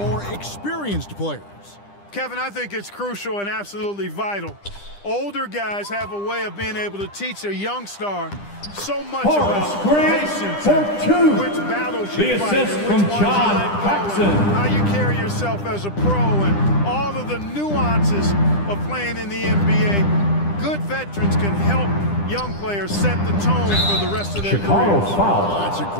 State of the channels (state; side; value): late; right; 10 ms